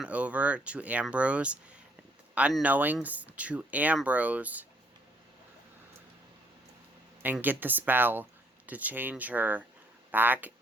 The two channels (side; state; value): both; normal; correlation 0.67